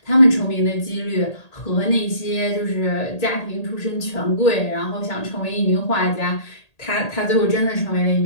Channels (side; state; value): right; late; 1.8 ms